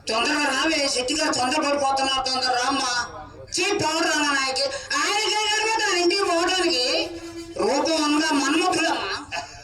తొందరగా రావే. శెట్టి గారు తొందరపడిపోతున్నారు. తొందర రామ్మా. పౌడర్ అన్న నాయకి ఆయనకి తన ఇంటికి పోవడానికి రూపం ఉందా? మన్మధులమ్మా.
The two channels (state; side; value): identical; both; correlation 1.00